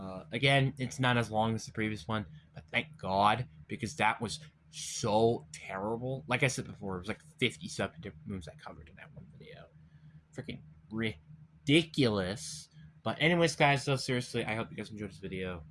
Again, it's not as long as the previous one, but thank God, because that was so terrible. Like I said before, it was like 57 different moves I covered in that one video. Freaking ridiculous. But anyways, guys, though, seriously, I hope you guys enjoyed this video.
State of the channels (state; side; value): identical; both; correlation 1.00